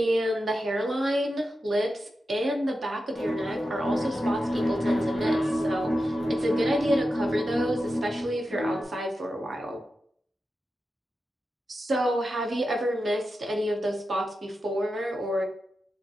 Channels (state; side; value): normal; both; correlation 0.90